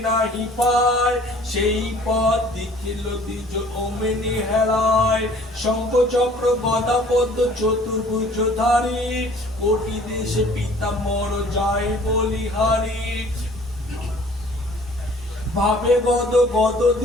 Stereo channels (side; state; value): both; normal; correlation 0.53